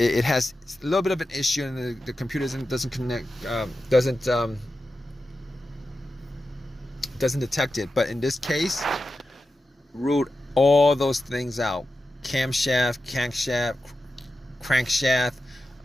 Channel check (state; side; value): normal; both; correlation 0.91